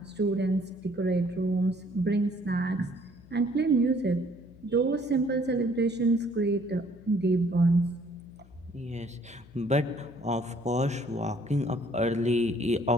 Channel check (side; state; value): left; noise; hum, 24 dB below the sound